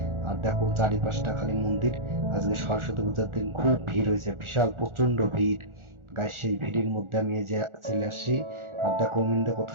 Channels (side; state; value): left; late; 1.4 ms